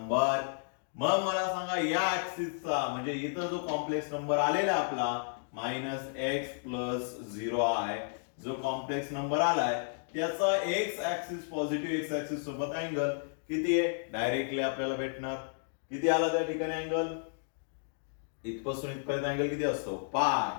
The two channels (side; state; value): right; silent; digital silence